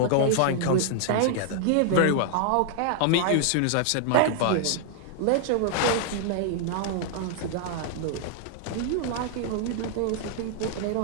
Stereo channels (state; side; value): different; both; correlation -0.01